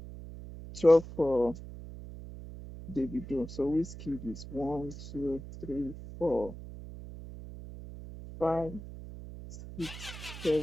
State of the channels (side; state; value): right; noise; hum, 12 dB below the sound